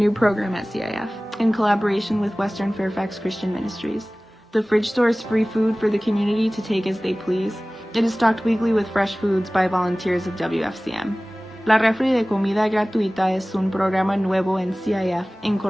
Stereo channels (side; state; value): both; normal; correlation 0.98